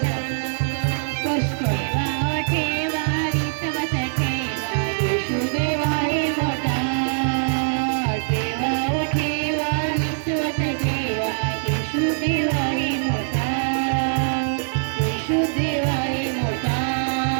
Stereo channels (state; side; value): silent; left; digital silence